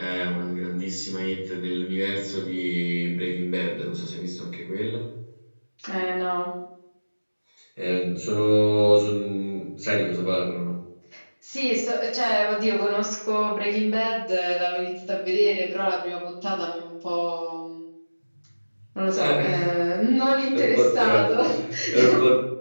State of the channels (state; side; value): inverted; both; correlation -1.00